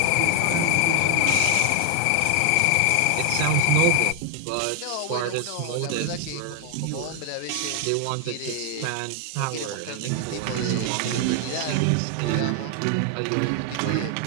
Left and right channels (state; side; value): different; both; correlation 0.00